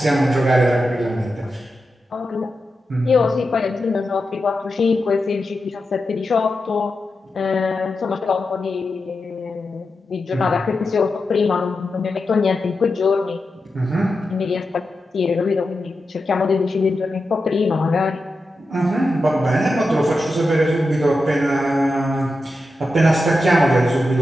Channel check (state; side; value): normal; both; correlation 0.89